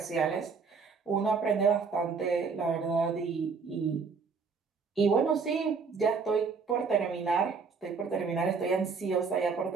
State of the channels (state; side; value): quieter; left; 5.1 dB